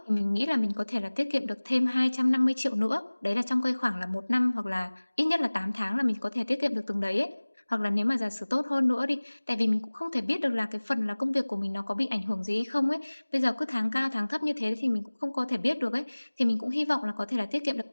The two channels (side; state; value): both; inverted; correlation -1.00